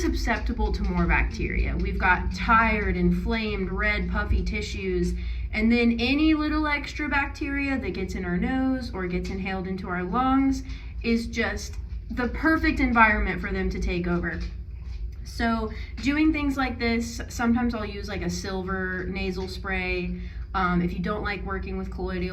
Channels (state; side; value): identical; both; correlation 1.00